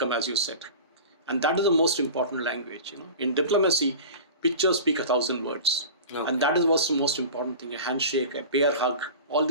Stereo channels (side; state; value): both; inverted; correlation -0.34